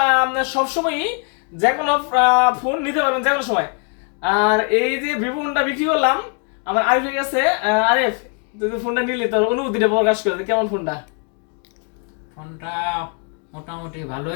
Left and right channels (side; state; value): right; quieter; 38.8 dB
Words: সবসময়ই যে কোনো ফোন নিতে পারবেন যে কোনো সময়। আর এই যে ভিভো ফোনটা বিক্রি করলাম আমার আরিফের কাছে। আরিফ, তুই ফোনটা নিলি, তোর অনুভূতিটা প্রকাশ করে কেমন ফোনটা? ফোনটা মোটামুটি